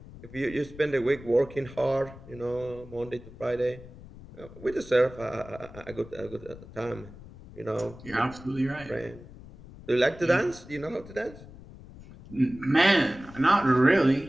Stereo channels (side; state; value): left; noise; rumble, 17 dB below the sound